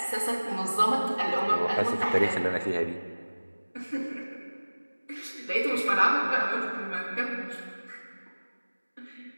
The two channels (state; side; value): inverted; both; correlation -1.00